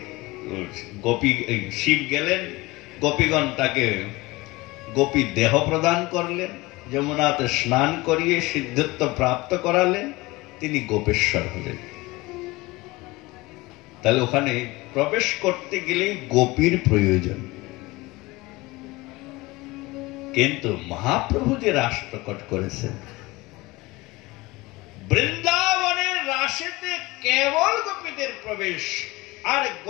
গোপী শিব গেলেন, গোপীগণ তাকে গোপী দেহ প্রদান করলেন, যমুনাতে স্নান করিয়ে সিদ্ধত্ব প্রাপ্ত করালেন, তিনি গোপেশ্বর হলেন। তাহলে ওখানে প্রবেশ করতে গেলে গোপীর প্রয়োজন। কিন্তু মহাপ্রভু যে রাস প্রকট করেছেন, বৃন্দাবনের রাসেতে কেবল গোপীদের প্রবেশ, আর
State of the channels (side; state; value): right; quieter; 21.6 dB